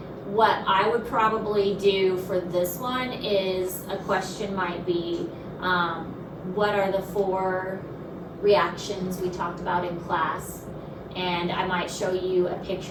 What I would probably do for this one is a question might be, what are the 4 reactions we talked about in class? And I might show you a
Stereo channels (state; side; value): identical; both; correlation 1.00